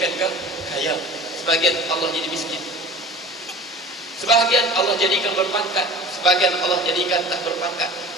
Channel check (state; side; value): normal; both; correlation 0.39